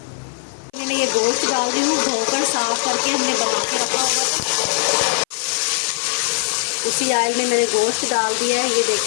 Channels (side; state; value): right; silent; 55 dB below the other